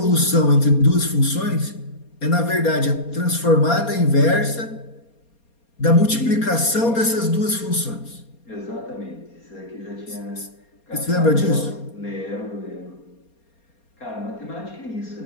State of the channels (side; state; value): right; late; 4.3 ms